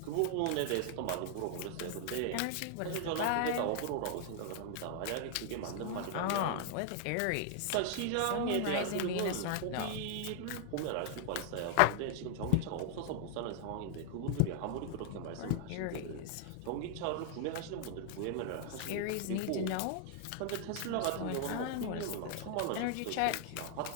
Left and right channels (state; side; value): different; both; correlation 0.00